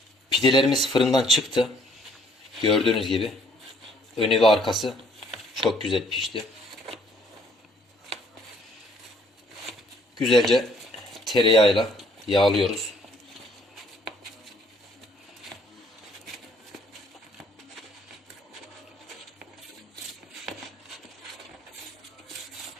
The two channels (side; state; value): both; normal; correlation 0.62